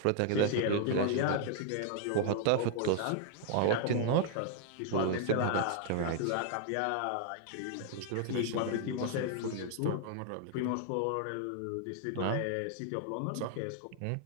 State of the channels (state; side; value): different; both; correlation 0.00